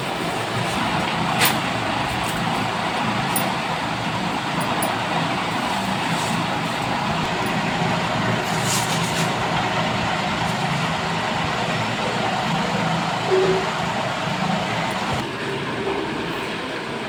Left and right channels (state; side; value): identical; both; correlation 1.00